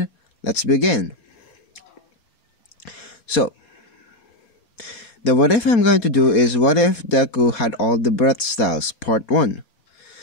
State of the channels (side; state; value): right; late; 4.2 ms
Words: let's begin. So the what if I'm going to do is, what if Deku had all the breath styles, part 1.